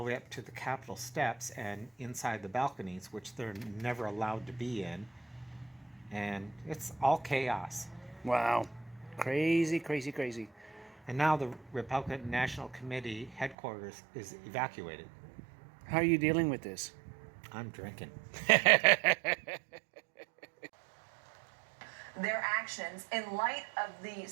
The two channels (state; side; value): drops out; left; at 13.6 s